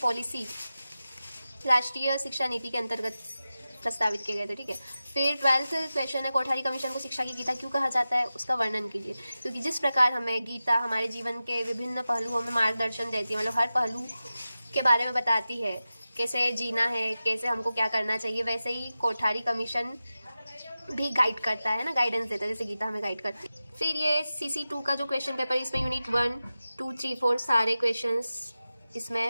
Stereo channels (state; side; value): inverted; both; correlation -0.94